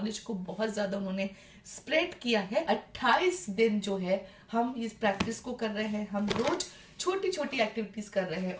को बहुत ज्यादा उन्होंने स्प्रेड किया है। 28 दिन जो है हम इस प्रैक्टिस को कर रहे हैं। हम रोज छोटी छोटी एक्टिविटीज कर रहे हैं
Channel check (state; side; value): identical; both; correlation 1.00